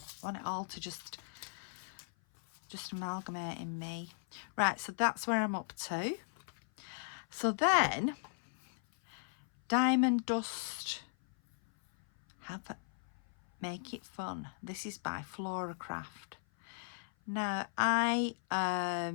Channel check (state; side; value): silent; right; 53 dB below the other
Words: I want it all to just amalgamate in me. Right, so that's where I'm up to. So then, Diamond Dust, Make It Fun. This is by Flora Craft. Now, I